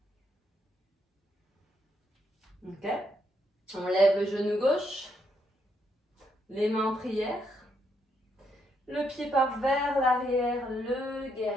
Ok. On lève le genou gauche, les mains en prière. Le pied part vers l'arrière, le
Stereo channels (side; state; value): both; normal; correlation 0.76